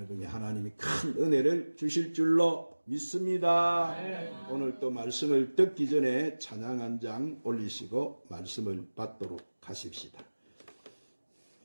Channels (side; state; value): both; inverted; correlation -1.00